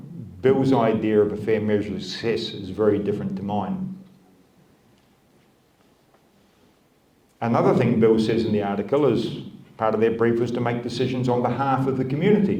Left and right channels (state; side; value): identical; both; correlation 1.00